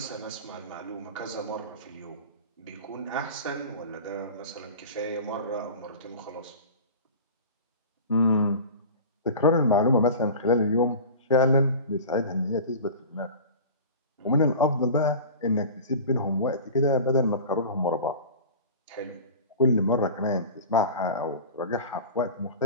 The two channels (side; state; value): both; inverted; correlation -0.35